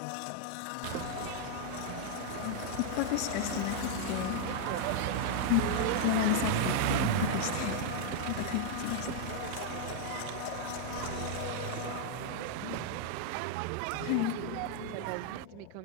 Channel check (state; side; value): different; both; correlation 0.00